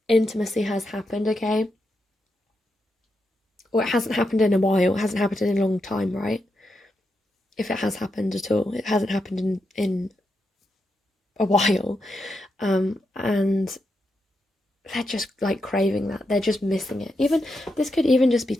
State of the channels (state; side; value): normal; both; correlation 0.85